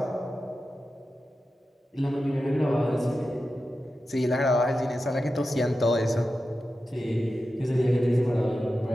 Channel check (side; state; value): both; normal; correlation 0.92